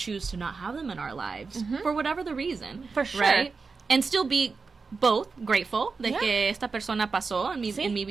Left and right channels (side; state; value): left; quieter; 4.6 dB